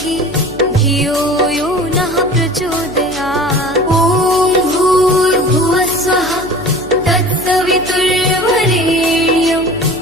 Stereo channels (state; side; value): noise; left; hum, 17 dB below the sound